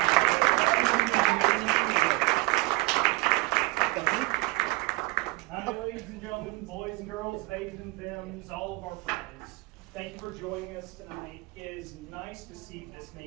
Hi, ladies and gentlemen, boys and girls, babies and femmes, all of our friends. Thank you for joining us tonight. It is nice to see this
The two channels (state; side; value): quieter; left; 23.7 dB